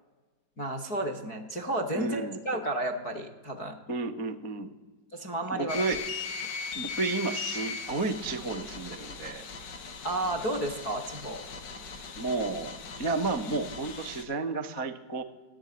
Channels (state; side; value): late; right; 4.7 ms